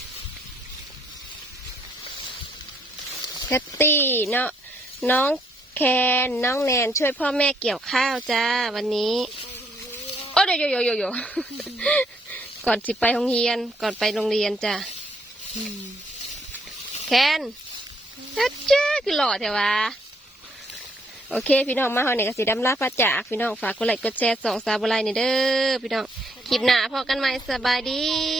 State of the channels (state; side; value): normal; both; correlation 0.71